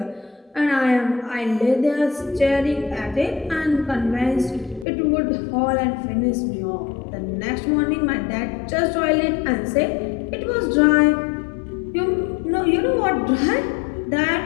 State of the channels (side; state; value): right; drops out; at 4.9 s